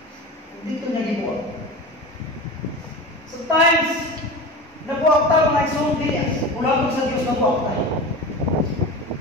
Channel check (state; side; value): normal; both; correlation 0.30